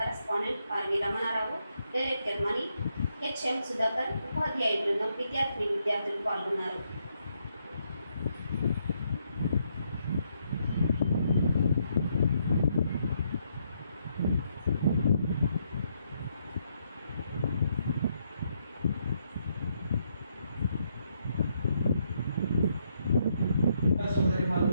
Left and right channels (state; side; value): inverted; both; correlation -0.76